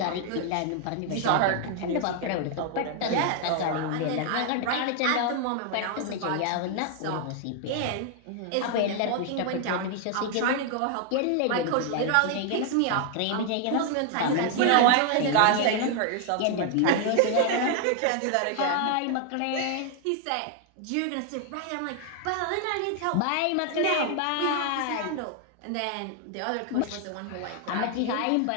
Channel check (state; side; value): different; both; correlation 0.00